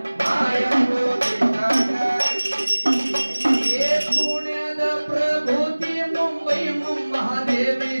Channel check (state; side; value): inverted; both; correlation -1.00